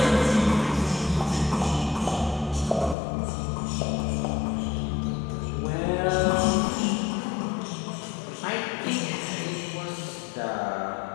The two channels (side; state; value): right; drops out; at 3.0 s